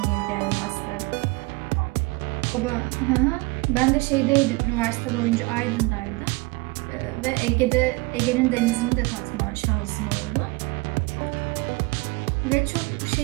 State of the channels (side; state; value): left; quieter; 25.0 dB